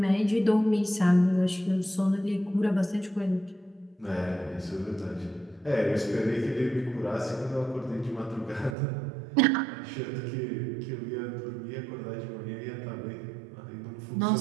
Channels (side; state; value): left; drops out; at 8.8 s